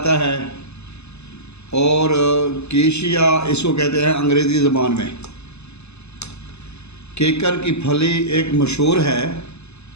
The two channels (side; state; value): right; late; 0.80 ms